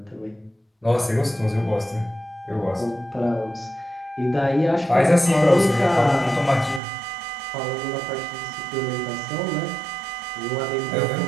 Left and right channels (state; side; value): drops out; left; at 6.8 s